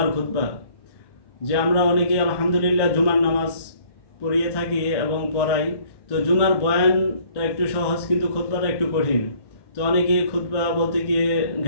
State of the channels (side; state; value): right; late; 1.1 ms